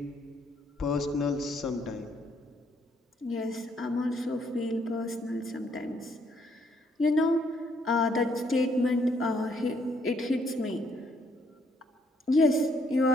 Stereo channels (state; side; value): normal; both; correlation 0.69